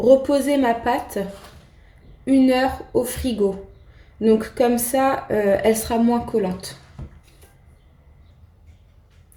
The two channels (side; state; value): both; identical; correlation 1.00